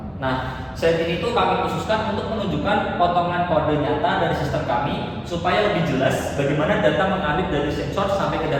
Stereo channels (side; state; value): both; identical; correlation 1.00